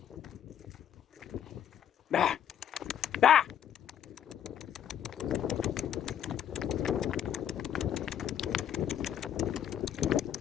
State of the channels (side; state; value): right; quieter; 9.7 dB